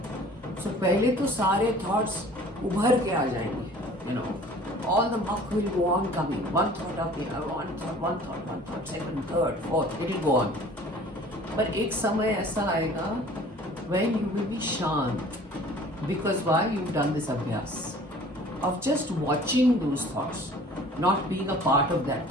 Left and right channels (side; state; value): both; normal; correlation 0.48